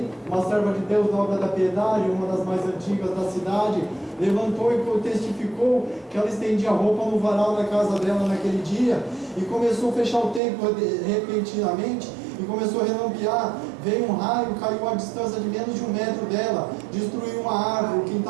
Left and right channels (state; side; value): drops out; left; at 10.4 s